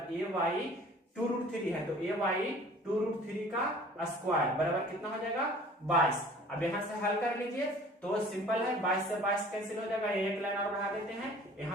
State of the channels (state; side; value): normal; both; correlation 0.48